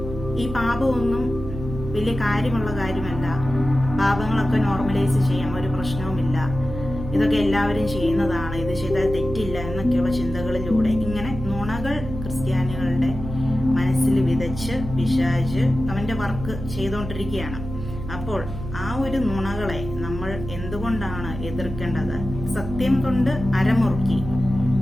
ഈ പാപമൊന്നും വലിയ കാര്യമുള്ള കാര്യമല്ല, പാപങ്ങളൊക്കെ നോർമലൈസ് ചെയ്യാം, ഒരു പ്രശ്നവുമില്ല, ഇതൊക്കെ എല്ലാവരും ചെയ്യുന്നതാണ്, ഇത് ചെയ്താൽ തെറ്റില്ല എന്നൊക്കെയുള്ള ചിന്തകളിലൂടെ ഇങ്ങനെ നുണകൾ ക്രിസ്ത്യാനികളുടെ മനസ്സിൽ വിതച്ച് പിശാച് അവന്റെ വർക്ക് ചെയ്തുകൊണ്ടിരിക്കുകയാണ്. അപ്പോൾ ആ ഒരു നുണകളെ നമ്മൾ എന്തുകൊണ്ടാണ് എതിർക്കേണ്ടത്? സത്യം കൊണ്ട് അരമുറുക്കി.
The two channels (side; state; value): right; noise; hum, 8 dB below the sound